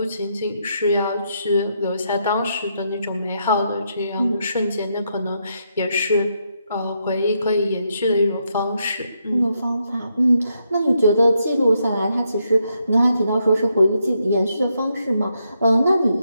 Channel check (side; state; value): both; inverted; correlation -0.79